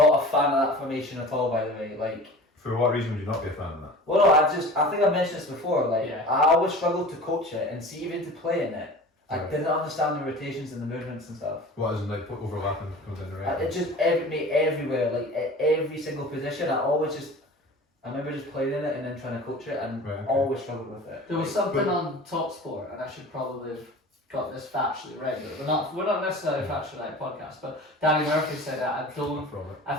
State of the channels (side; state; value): both; normal; correlation 0.39